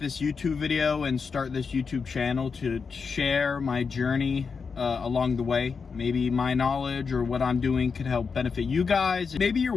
YouTube video and start this YouTube channel to share my journey along the way. Maybe my knowledge or what I'm doing could help benefit you guys. Maybe you're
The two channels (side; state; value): right; quieter; 5.4 dB